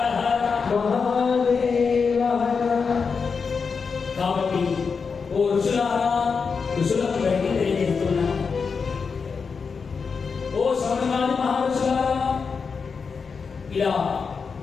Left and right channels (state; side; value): quieter; right; 5.4 dB